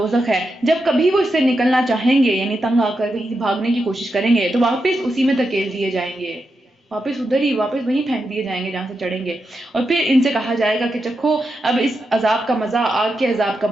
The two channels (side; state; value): both; normal; correlation 0.87